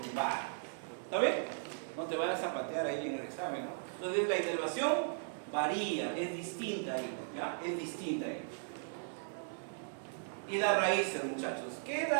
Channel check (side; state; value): left; silent; digital silence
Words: ¿Está bien? No te vayas a patear ahí en el examen, ¿no? Entonces la inervación varía, es distinta ahí, ¿ya? Es distinta ahí. Y las raíces, muchachos. ¿Qué es